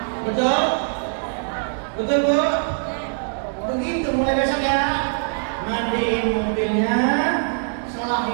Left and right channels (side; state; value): left; silent; digital silence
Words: Betul? Betul bu? Begitu mulai besok ya. Mandiin mobilnya,